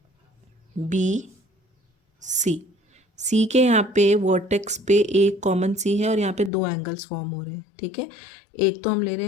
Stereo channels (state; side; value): drops out; right; at 6.5 s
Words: B C, C के यहाँ पे वर्टेक्स पे एक कॉमन सी है और यहाँ पे दो एंगल्स फॉर्म हो रहे हैं, ठीक है। एक तो हम ले रहे